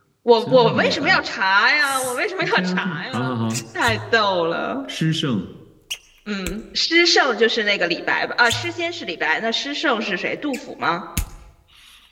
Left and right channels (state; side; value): identical; both; correlation 1.00